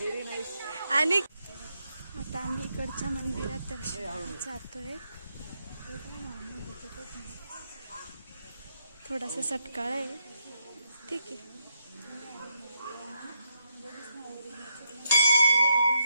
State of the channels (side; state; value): both; inverted; correlation -0.79